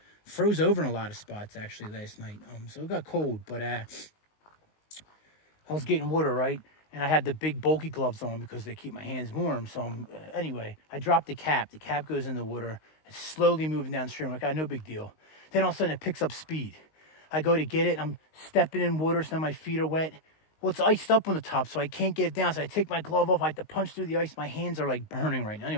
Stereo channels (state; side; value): late; right; 19 ms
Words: froze over in a lot of spots, actually, last night. So it got cold, but I was getting water, right? And I had the big bulky gloves on because they keep my hands warm. So anyway, I dropped the cap. The cap goes in the water. It's slowly moving downstream. I'm like, no big deal. Then all of a sudden it picks up speed. I go to get it. I'm stepping in water, so now my feet are wet. Well, it's iced up on the top, so I can't get it down. So I take my glove off. I have to punch through the ice. My hands are like burning right now.